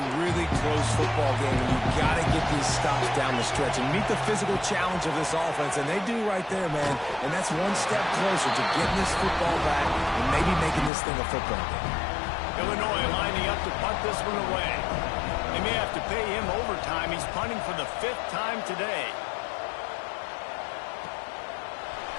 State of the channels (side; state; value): right; drops out; at 10.9 s